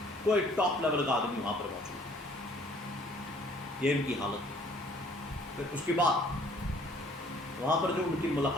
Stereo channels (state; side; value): normal; both; correlation 0.58